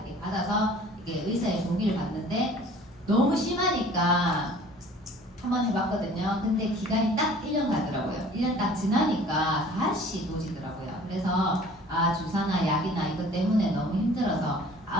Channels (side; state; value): both; normal; correlation 0.49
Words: 받아서 이게 의사의 동의를 받는데 너무 심하니까 한번 해봤거든요. 근데 기간이 딱 1년 가더라고요. 1년 딱 지나니까 다시 도지더라고요. 그래서 주사나 약이나 이것 때문에 너무 힘들어서